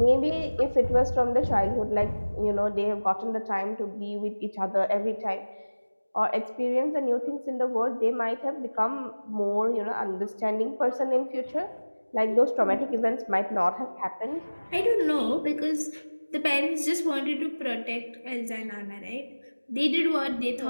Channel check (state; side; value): inverted; both; correlation -1.00